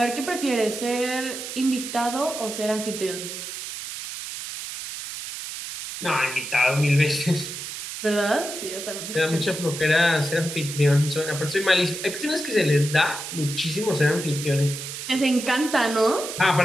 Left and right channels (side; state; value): right; noise; hiss, 8 dB below the sound